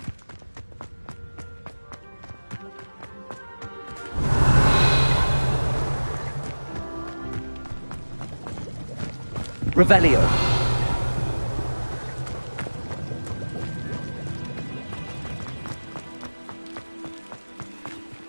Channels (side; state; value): both; inverted; correlation -1.00